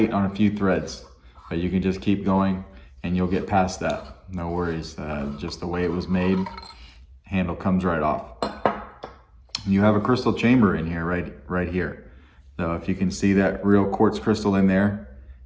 on a few threads, but you can just keep going and you'll get past that. No worries, just the way it was made, handle comes right off. You have a crystal chamber in here, right here. So if you can see that real quartz crystal in there,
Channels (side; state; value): both; identical; correlation 1.00